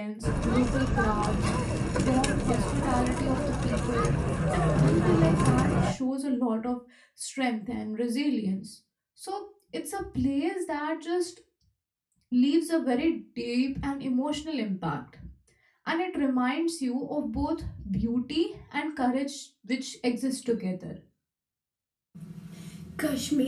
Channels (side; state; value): both; identical; correlation 1.00